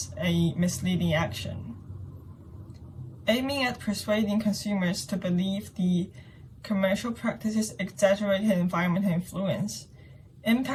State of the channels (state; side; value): identical; both; correlation 1.00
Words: a misleading action. Aiming at persuading consumers to believe the commercial practice's exaggerated environmental influence,